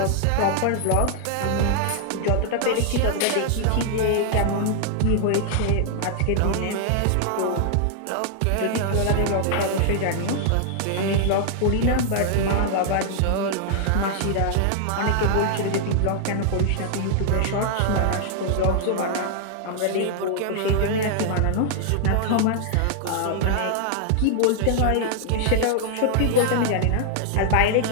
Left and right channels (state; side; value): different; both; correlation -0.01